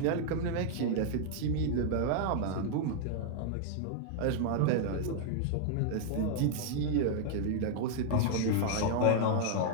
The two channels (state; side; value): different; both; correlation -0.01